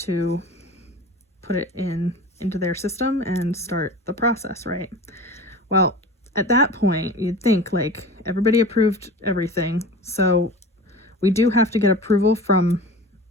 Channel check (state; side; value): normal; both; correlation 0.36